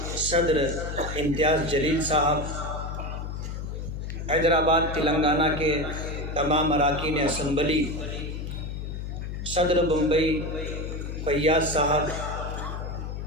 صدر امتیاز جلیل صاحب، حیدرآباد تلنگانہ کے تمام اراکین اسمبلی، صدر بمبئی فیاض صاحب،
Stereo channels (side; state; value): left; noise; hum, 6 dB below the sound